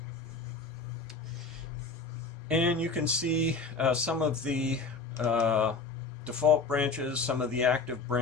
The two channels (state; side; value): quieter; right; 4.2 dB